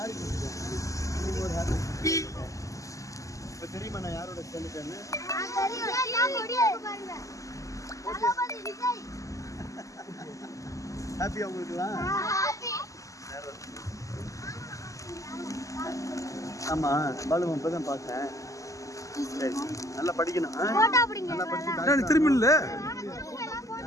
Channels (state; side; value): late; right; 0.16 ms